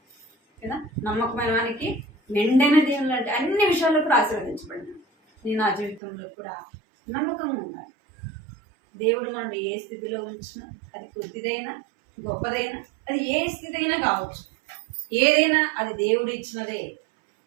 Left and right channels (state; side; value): drops out; left; at 6.0 s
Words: కదా. నమ్మకమైన వానికి మెండైన దేవుళ్ళు అంటే అన్ని విషయాల్లో కూడా ఆశీర్వదించబడినాడు. నేను నా జీవితంలో కూడా నమ్మకంగా ఉండాలి. దేవుడు మనల్ని ఏ స్థితిలో ఉంచినా, అది కొద్దిదైనా గొప్పదైనా, అది ఏ స్థితి అయినా కావచ్చు, ఏదైనా అది దేవుడు ఇచ్చినదే